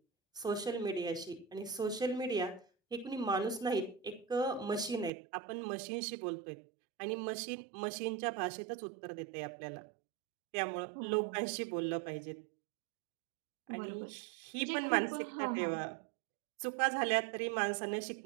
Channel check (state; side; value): drops out; left; at 5.1 s